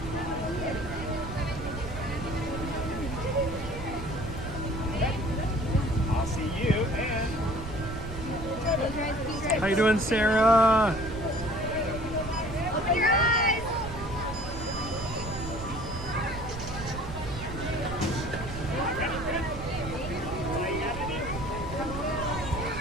I'll see you and... How you doing, Sarah? Open your eyes.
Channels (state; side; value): noise; right; rumble, 9 dB below the sound